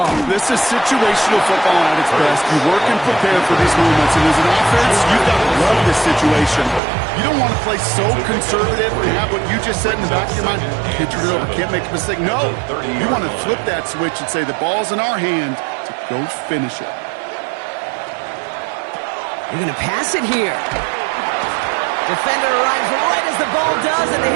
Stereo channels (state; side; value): drops out; left; at 6.8 s